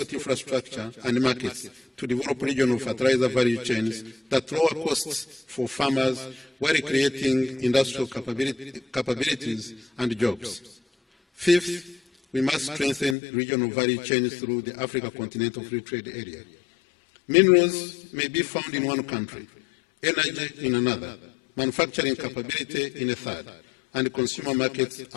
infrastructure, and markets to develop regional fertilizer value chains that lower costs for farmers while creating industrial capabilities and jobs. Fifth, we must strengthen regional value chains through the Africa Continental Free Trade Area. Minerals may be found in one country, energy in another, manufacturing capability in a third, and consumer markets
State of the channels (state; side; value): drops out; right; at 13.2 s